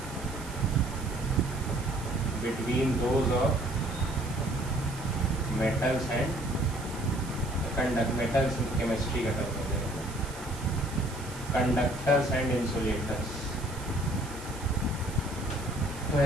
between those of metals and metals chemistry का टर्म हो जाएगा, conductors and insulators। तो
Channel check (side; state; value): right; noise; hiss, 16 dB below the sound